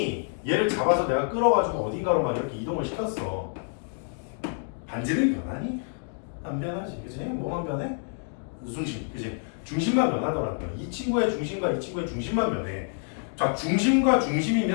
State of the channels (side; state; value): right; silent; 60 dB below the other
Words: 얘를 잡아서 내가 끌어가지고 어딘가로 막 이렇게 이동을 시켰어. 반지를 변하니? 안 변하지. 그치? 뭐만 변해? 중심. 그치? 중심만 변하더라고요. 이 친구의 중심과 이 친구의 중심만 변해. 자, 중심과